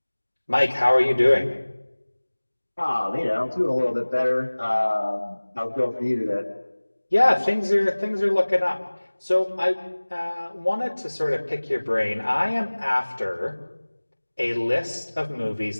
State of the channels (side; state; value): both; inverted; correlation -1.00